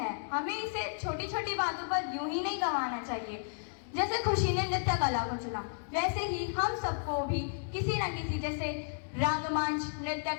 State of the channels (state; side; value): silent; right; digital silence